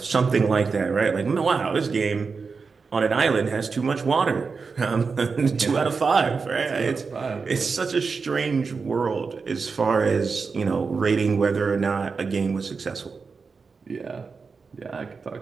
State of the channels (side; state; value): left; quieter; 4.9 dB